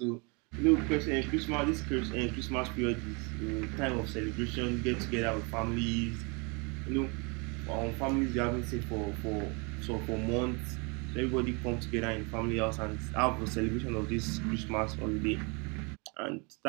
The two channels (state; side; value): quieter; left; 31.4 dB